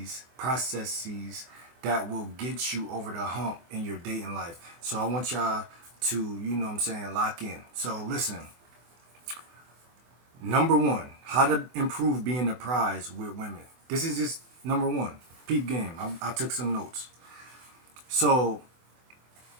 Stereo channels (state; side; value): late; left; 24 ms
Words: that will get you over the hump in your dating life. So I want y'all to, lock in. So listen, number one, how to improve being a prize with women. This is just number one. Peep game. I took some notes. So